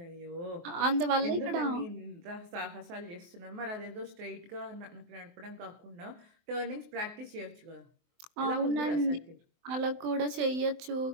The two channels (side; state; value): left; late; 23 ms